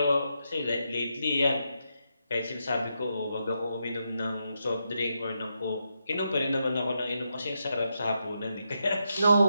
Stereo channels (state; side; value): inverted; both; correlation -0.83